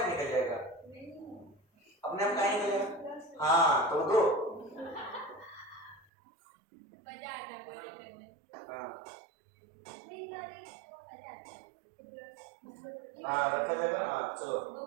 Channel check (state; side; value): drops out; left; at 6.1 s